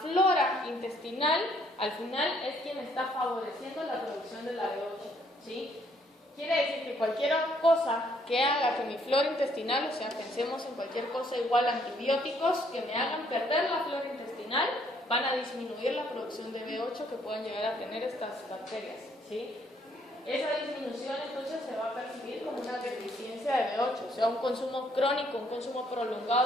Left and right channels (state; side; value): normal; both; correlation 0.67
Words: intestinal al final es quien está favoreciendo la producción de la B8, ¿sí? Quiere decir que cualquier cosa que haga que mi flora intestinal, o sea, pensemos en cualquier cosa igual a antibióticos que me hagan perder la flora intestinal, van a disminuir la producción de B8 que puedan llegar a tener estas bacterias, ¿sí? Esa disminución entonces se va a percibir como una deficiencia de B8, o sea, un consumo crónico, un consumo